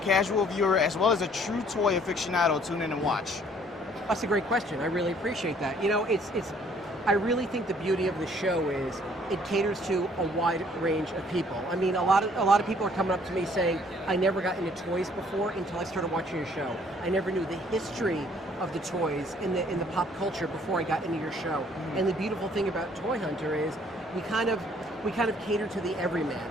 viewer, as well as a true toy aficionado, tune in and watch? That's a great question. I really appreciate that. You know, I really think the beauty of the show is it caters to a wide range of people. I mean, a lot of people are coming up to me saying, I never got into toys before until I started watching your show. I never knew the history of the toys in the pop culture before I got into your show. Mm-hmm. And the beautiful thing about Toy Hunter is we kind of cater to the everyman.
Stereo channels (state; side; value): normal; both; correlation 0.60